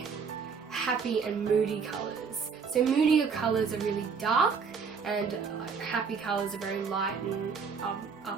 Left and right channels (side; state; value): left; quieter; 5.7 dB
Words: happy and moody colours. So moodier colours are really dark, and happy colours are very light and